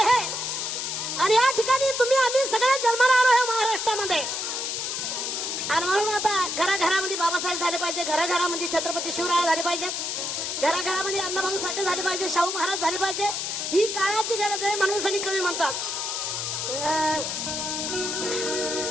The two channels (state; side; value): noise; left; hiss, 2 dB below the sound